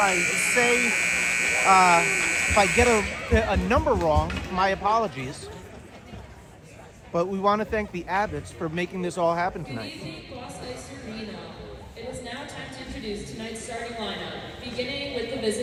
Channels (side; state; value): both; identical; correlation 1.00